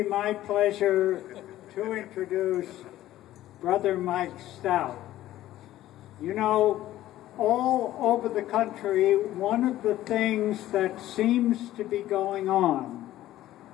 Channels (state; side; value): quieter; right; 14.3 dB